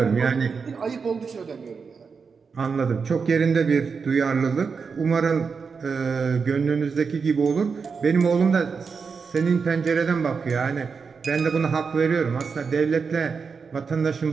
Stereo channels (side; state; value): left; quieter; 5.4 dB